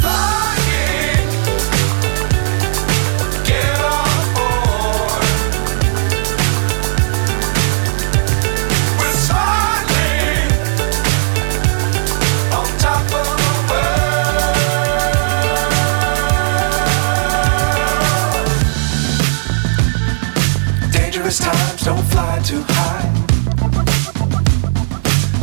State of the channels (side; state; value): left; silent; digital silence